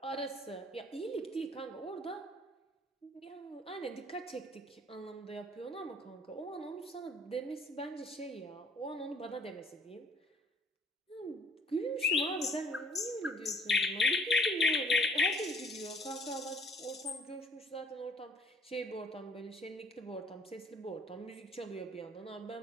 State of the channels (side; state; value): both; normal; correlation 0.57